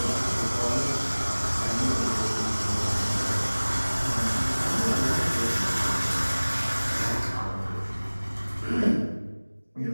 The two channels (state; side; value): inverted; both; correlation -1.00